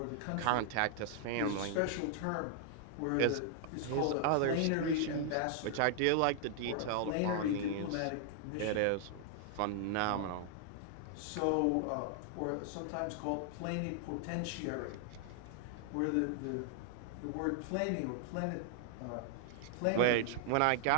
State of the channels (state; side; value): different; both; correlation 0.00